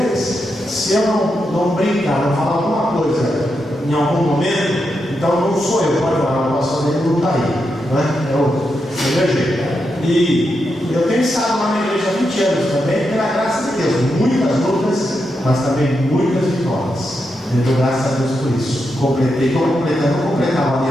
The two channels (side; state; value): both; normal; correlation 0.85